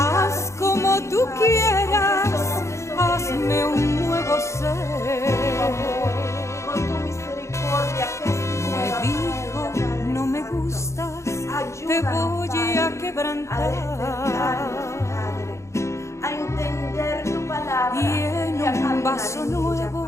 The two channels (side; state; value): right; late; 0.14 ms